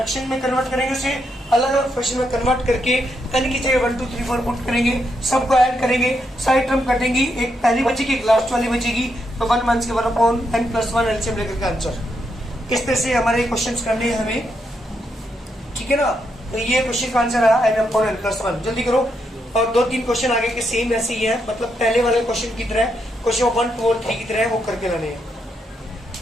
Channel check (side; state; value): both; normal; correlation 0.80